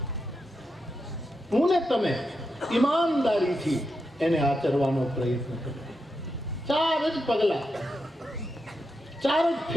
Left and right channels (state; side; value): normal; both; correlation 0.86